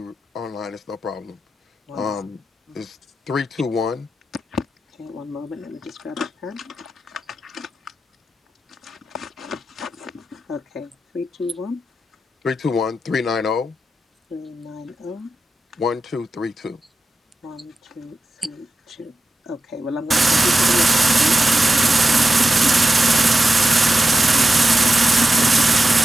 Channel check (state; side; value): normal; both; correlation 0.90